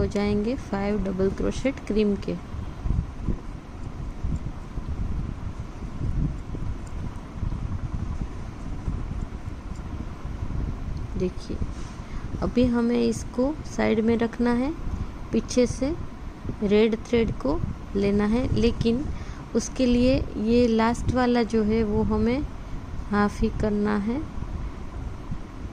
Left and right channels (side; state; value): both; identical; correlation 1.00